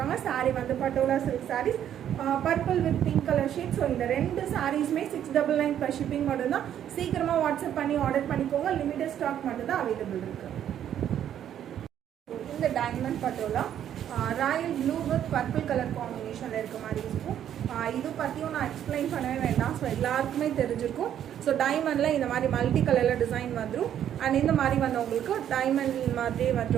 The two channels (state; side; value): quieter; left; 10.2 dB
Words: சாரீ வந்து Patola silk saris purple with pink colour shade. So இந்த ரெண்டு சாரீஸுமே 699 per shipping மட்டும்தான். சீக்கிரமாக வாட்ஸ்அப் பண்ணி ஆர்டர் பண்ணிக்கோங்க. லிமிடெட் ஸ்டாக் மட்டும்தான் அவைலபிள் இருக்குது. இந்த diamond patola Royal blue with purple colour காம்பினேஷனில் இருக்க மாதிரி இருக்கும். இது பற்றியும் நான் எக்ஸ்பிளைன் பண்ணவே வேண்டாம். ஸோ எல்லாருக்குமே தெரிஞ்சிருக்கும். ஸோ டைமண்டில் இந்த மாதிரி மல்டி கலரில் டிசைன் வந்துடும். அண்ட் இந்த மாதிரி வந்து உங்களுக்கு டைமண்ட் மாதிரி வந்து